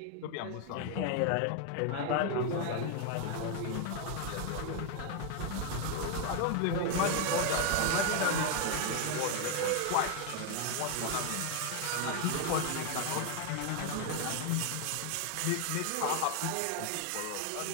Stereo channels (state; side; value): different; both; correlation 0.01